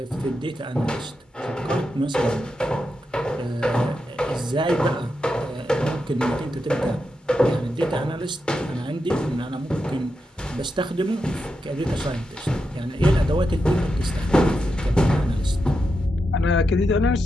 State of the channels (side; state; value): both; normal; correlation 0.86